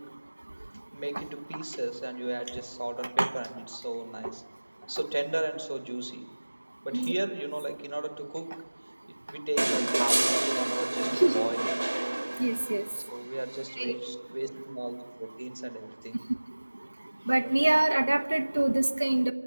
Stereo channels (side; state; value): both; inverted; correlation -1.00